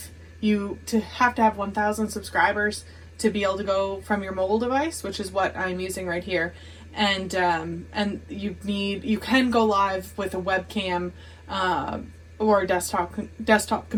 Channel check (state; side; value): identical; both; correlation 1.00